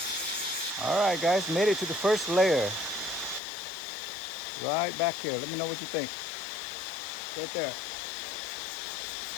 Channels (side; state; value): right; drops out; at 3.4 s